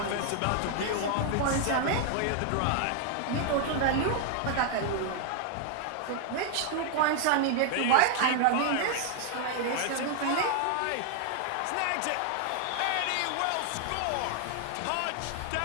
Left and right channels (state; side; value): different; both; correlation 0.00